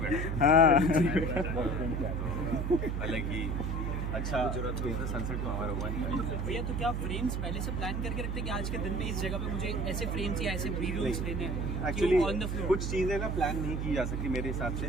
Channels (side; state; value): right; noise; hum, 1 dB below the sound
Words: हाँ हालांकि अच्छा सनसेट तो हमारा हुआ नहीं भैया तो क्या फ्रेम्स पहले से प्लान करके रखते हैं कि आज के दिन में इस जगह पे मुझे ऐसे फ्रेम्स या ऐसे वीडियोस लेने हैं एक्चुअली ऑन द फ्लोर? कुछ चीज़ें ना प्लान नहीं की जा सकती मेरे हिसाब से।